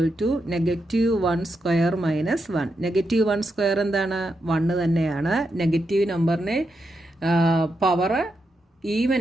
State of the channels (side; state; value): both; normal; correlation 0.84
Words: -1² - 1. -1² എന്താണ്? 1 തന്നെയാണ്. നെഗറ്റീവ് നമ്പറിനെ പവർ ഈവൻ